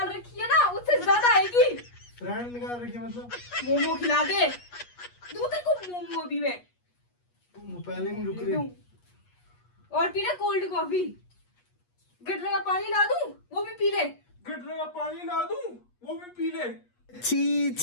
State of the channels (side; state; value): right; late; 8.3 ms